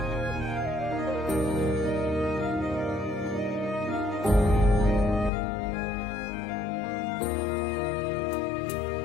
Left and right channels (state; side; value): drops out; right; at 5.3 s